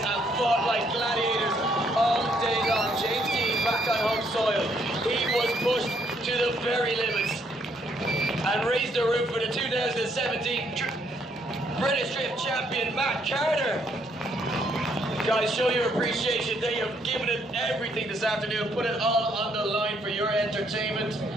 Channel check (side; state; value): both; normal; correlation 0.70